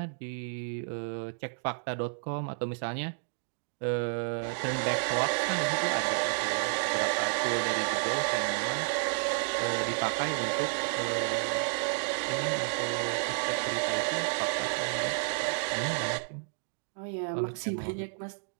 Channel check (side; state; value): left; silent; digital silence